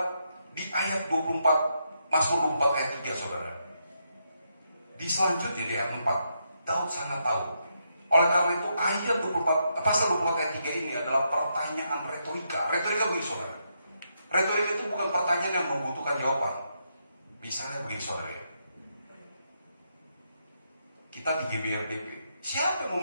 di ayat 24, Mazmur 24 ayat 3, saudara. Di selanjutnya di ayat 4, Daud sangat tahu. Oleh karena itu ayat 24, pasal 24 ayat 3 ini adalah pertanyaan retorika. Retorika begini, saudara. Retorika itu bukan pertanyaan yang membutuhkan jawaban. Misalnya begini, saudara ya. Kita di GBRDP, siapa yang mau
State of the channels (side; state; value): both; inverted; correlation -0.80